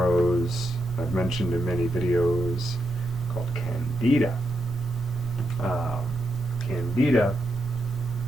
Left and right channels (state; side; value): normal; both; correlation 0.84